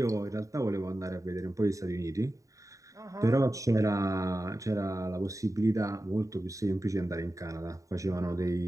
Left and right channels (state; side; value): late; left; 0.16 ms